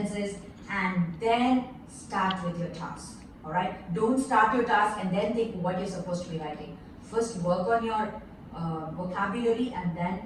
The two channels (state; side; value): identical; both; correlation 1.00